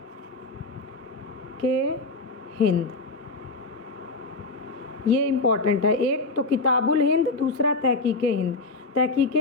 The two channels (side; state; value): right; quieter; 3.4 dB